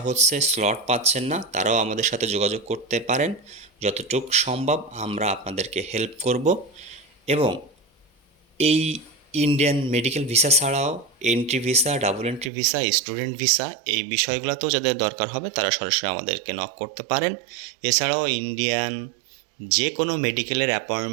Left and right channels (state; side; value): drops out; left; at 12.5 s